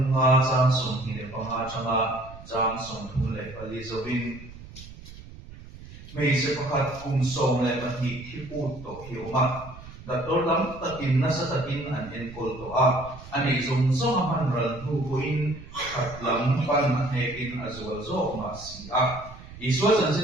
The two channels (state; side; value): noise; right; rumble, 16 dB below the sound